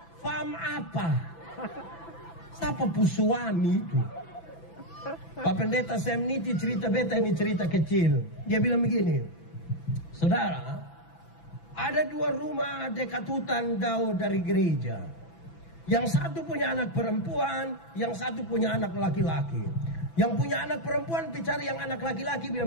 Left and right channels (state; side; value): late; right; 6.0 ms